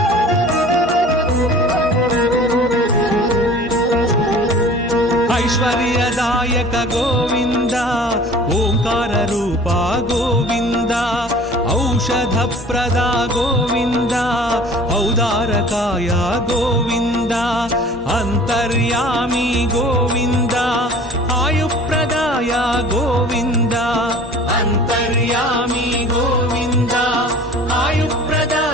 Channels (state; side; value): normal; both; correlation 0.45